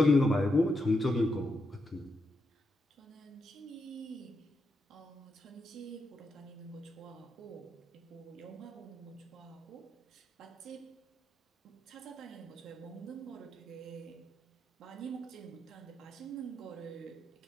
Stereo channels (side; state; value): both; normal; correlation 0.84